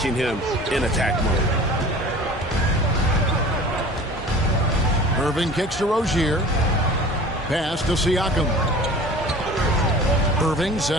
him in attack mode. Irving kicks to Rozier. Pass to Siakam. Irving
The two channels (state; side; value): normal; both; correlation 0.42